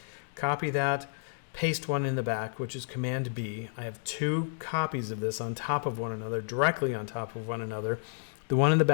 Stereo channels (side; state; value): right; silent; digital silence